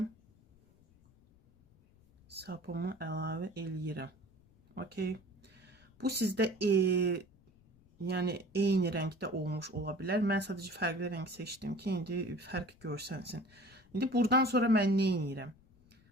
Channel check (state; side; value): noise; left; rumble, 29 dB below the sound